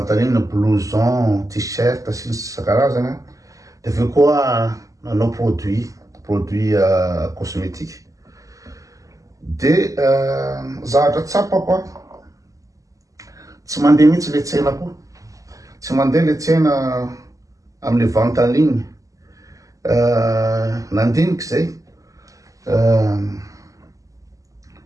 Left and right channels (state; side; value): late; left; 0.16 ms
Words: en ligne blouson, t-shirt sy ny isan-karazany, de aveo koa nanao produit cosmétique. De zavatra tsapako tsy mandeha mihitsy le tsenako, tsy mandeha le tsena am'le vente en ligne. Nandiniky zay